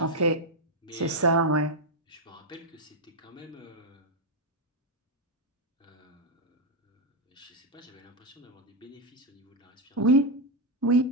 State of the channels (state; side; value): normal; both; correlation 0.02